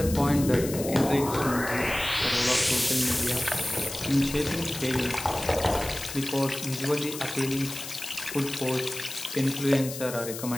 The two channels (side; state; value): left; noise; hiss, 9 dB below the sound